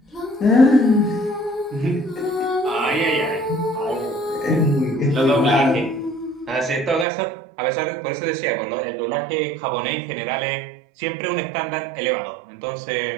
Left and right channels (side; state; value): left; drops out; at 7.1 s